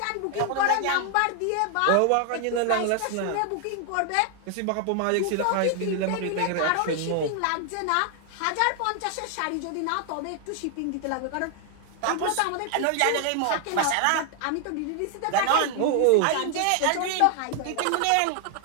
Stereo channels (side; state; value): both; different; correlation 0.00